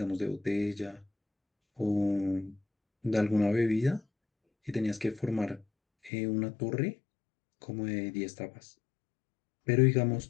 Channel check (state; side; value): drops out; right; at 6.1 s